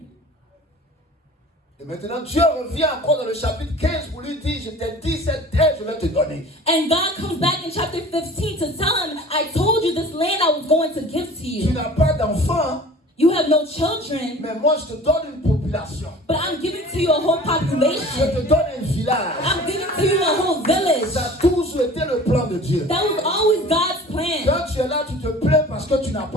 Et maintenant, Dieu revient encore dans le chapitre 15 pour lui dire, je t'ai dit cette terre, je vais te donner. And God comes back in chapter 15 to tell him, "I told you this land I was going to give to Tu you. n'as pas d'enfant, You have no children, mais moi je te donne une population. but I'm giving to you a whole Je population. te donne un village. I'm giving to you a whole village." Ça a toujours été le plan de Dieu. That was always God's plan. Quand tu es là, tu te plains parce que tu n'as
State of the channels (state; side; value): normal; both; correlation 0.43